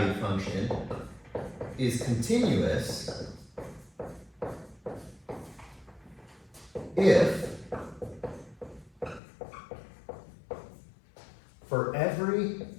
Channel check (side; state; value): right; drops out; at 9.2 s